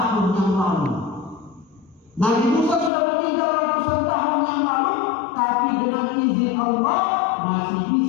yang lalu. Nabi Musa sudah meninggal ratusan tahun yang lalu, tapi dengan izin Allah masih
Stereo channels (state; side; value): drops out; right; at 2.9 s